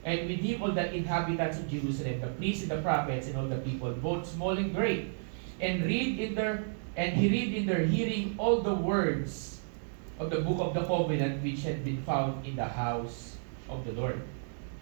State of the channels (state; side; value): silent; left; digital silence